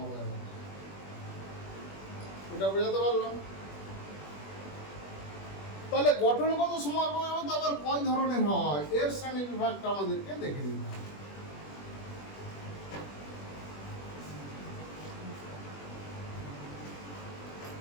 এটা বোঝাতে পারলাম? তাহলে গঠনগত সমবয়বতা আবার কয় ধরনের হয়, এর শ্রেণী বিভাগটা আমাদেরকে দেখে নিতে হবে।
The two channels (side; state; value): right; late; 21 ms